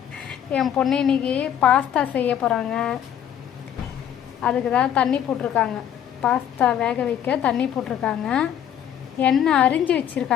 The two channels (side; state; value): right; quieter; 9.8 dB